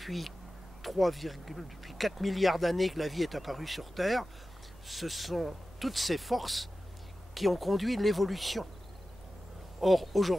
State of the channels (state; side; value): noise; right; rumble, 22 dB below the sound